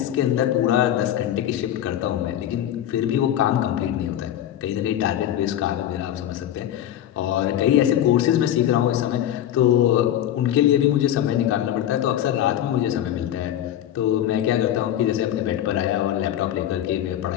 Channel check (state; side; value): quieter; right; 11.4 dB